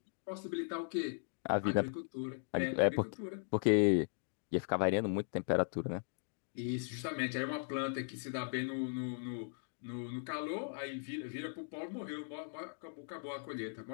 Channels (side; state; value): right; silent; digital silence